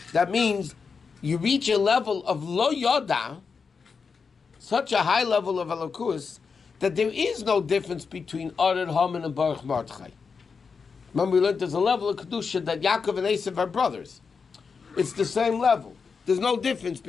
That means you reach a level of lo yoda, such a high level of elokus, that there is no difference between Ored Haman and Baruch Mordechai. Remember, we learned there's a level of kedusha that Yaakov and Esav are brothers. It's the same level. There's no difference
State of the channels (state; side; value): quieter; right; 5.4 dB